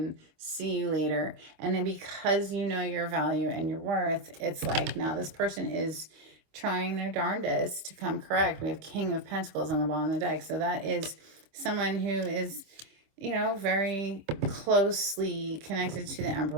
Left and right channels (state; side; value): late; left; 26 ms